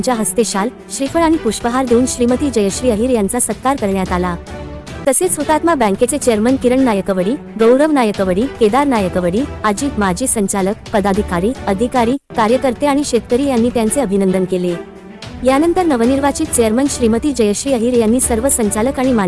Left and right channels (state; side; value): identical; both; correlation 1.00